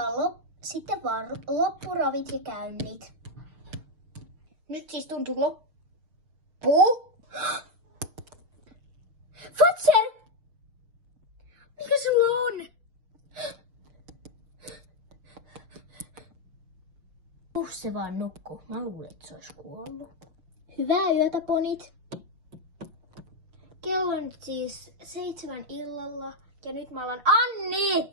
Sitten vaan loppuravit ja käynnit. Nyt siis tuntuu loppu. Fatser! Mikä sulla on? Se vaan nukkuu. Mä luulen, että se olisi kuollut. Hyvää yötä, ponit. Kello on siis 7 illalla ja nyt mä alan Anni!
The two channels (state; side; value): late; left; 6.6 ms